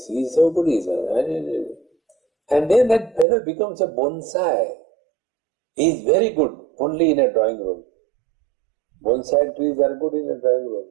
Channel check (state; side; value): drops out; left; at 3.2 s